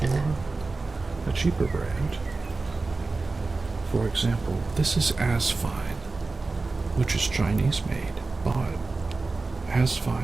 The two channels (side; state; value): left; quieter; 3.7 dB